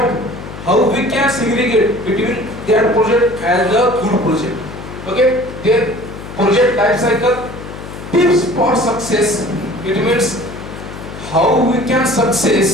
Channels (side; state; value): left; noise; hum, 12 dB below the sound